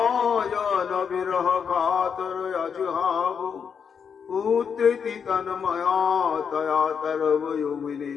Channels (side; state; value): right; quieter; 6.8 dB